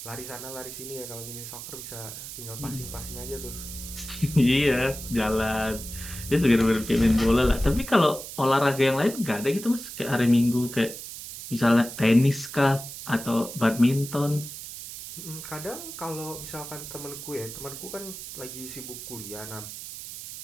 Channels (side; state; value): right; noise; hiss, 10 dB below the sound